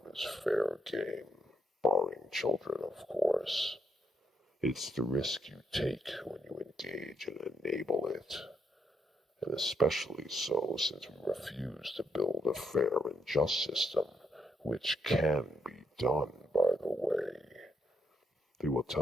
is fair game. Barring children, of course. It's the risk you take when you engage and enable it. And especially so since we refuse to build a fair and just system, which can be done, by the way. They will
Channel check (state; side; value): normal; both; correlation 0.76